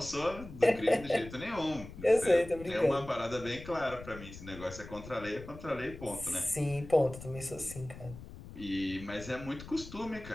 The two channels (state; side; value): noise; left; rumble, 14 dB below the sound